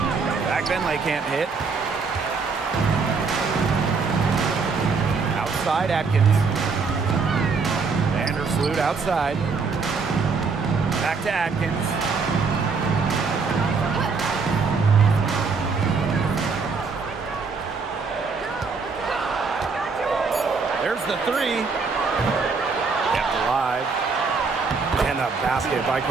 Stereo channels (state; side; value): quieter; left; 4.8 dB